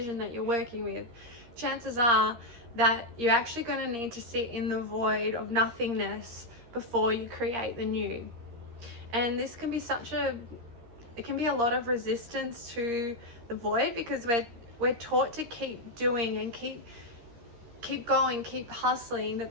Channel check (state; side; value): late; left; 13 ms